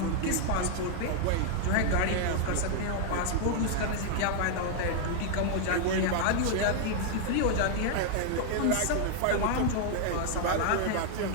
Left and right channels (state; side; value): different; both; correlation 0.00